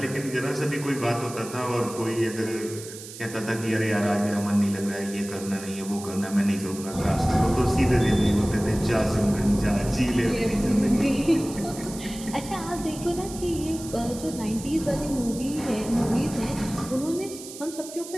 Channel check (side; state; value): right; noise; hiss, 13 dB below the sound